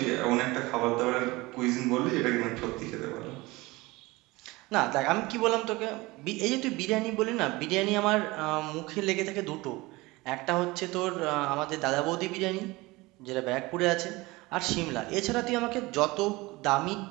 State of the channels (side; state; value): left; quieter; 21.8 dB